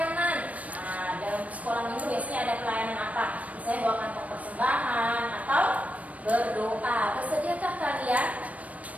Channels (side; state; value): left; late; 0.068 ms